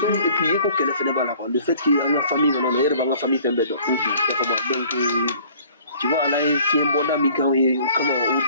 et puis ko kele fene bala ko le fait qu'il y a une famille non no yere ba nga famille fembe do donc tu vois là il fait un bon ami quand il comment au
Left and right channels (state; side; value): inverted; both; correlation -0.53